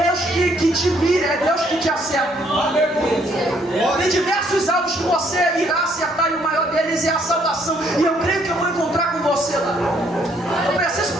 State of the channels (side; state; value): both; normal; correlation 0.67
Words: que te mira, é Deus que te acerta. Tem diversos alvos que você irá acertar, e o maior deles é a salvação. E eu creio que eu vou encontrar com você lá. Eu preciso